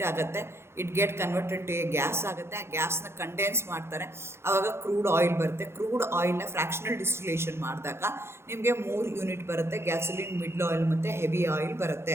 ಆಗುತ್ತೆ, it get converted to a gas ಆಗುತ್ತೆ. ಆ ಗ್ಯಾಸ್ನ ಕಂಡೆನ್ಸ್ ಮಾಡ್ತಾರೆ, ಆವಾಗ ಕ್ರೂಡ್ ಆಯಿಲ್ ಬರುತ್ತೆ. ಕ್ರೂಡ್ ಆಯಿಲ್ನ ಫ್ರ್ಯಾಕ್ಷನಲ್ ಡಿಸ್ಟಿಲೇಷನ್ ಮಾಡಿದಾಗ ನಿಮಗೆ 3 ಯೂನಿಟ್ ಬರುತ್ತೆ, ಗ್ಯಾಸೋಲಿನ್, ಮಿಡ್ಲ್ ಆಯಿಲ್ ಮತ್ತು ಹೆವಿ ಆಯಿಲ್ ಬರುತ್ತೆ.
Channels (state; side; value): late; left; 0.12 ms